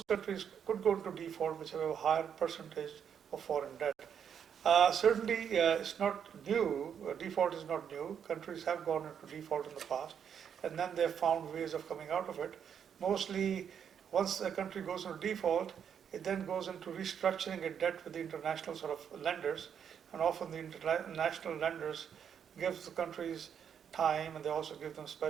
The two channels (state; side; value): quieter; left; 8.0 dB